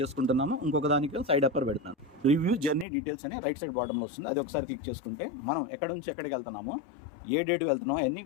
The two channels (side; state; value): right; drops out; at 2.9 s